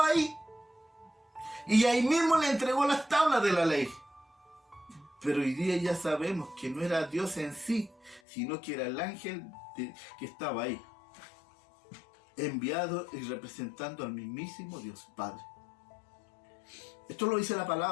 ahí y ahí mismo le entregó las tablas de la ley. Pero hoy día ya sabemos que no era Dios en sí, sino que era el ángel que estaba ahí, enviado y representando al mismísimo Dios Padre. Esto lo dice la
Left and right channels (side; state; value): right; drops out; at 8.2 s